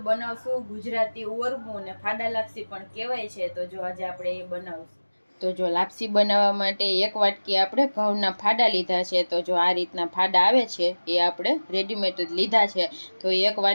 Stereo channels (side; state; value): both; inverted; correlation -1.00